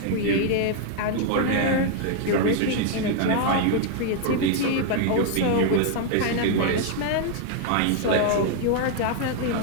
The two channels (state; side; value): different; both; correlation 0.00